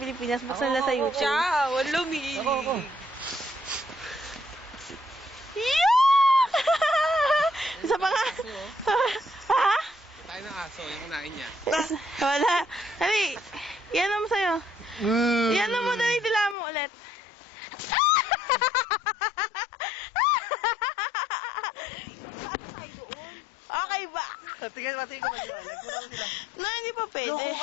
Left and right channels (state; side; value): drops out; right; at 16.6 s